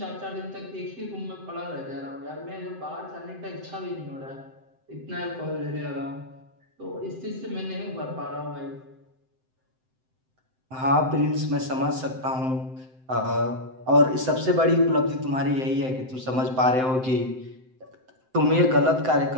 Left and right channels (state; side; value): late; left; 7.7 ms